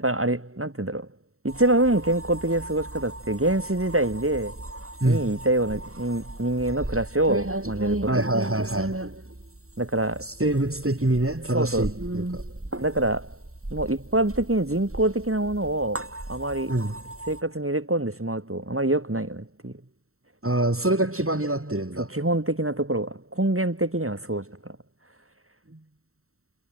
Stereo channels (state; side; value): late; left; 0.63 ms